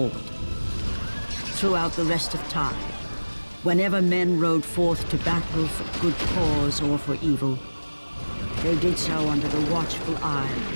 throughout the rest of time, whenever men rode forth to battle for good cause or for evil, they did so under the watchful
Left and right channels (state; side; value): inverted; both; correlation -1.00